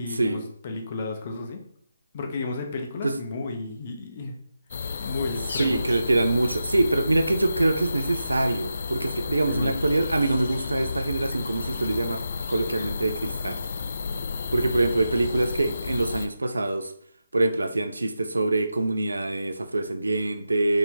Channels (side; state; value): both; inverted; correlation -0.89